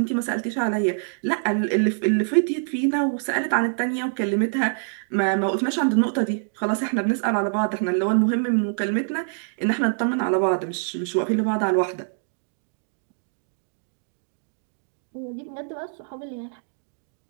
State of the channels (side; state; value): left; silent; digital silence